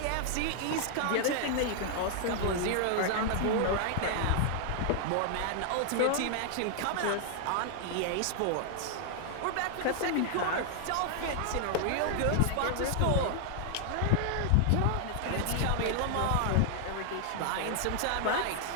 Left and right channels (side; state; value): both; different; correlation 0.00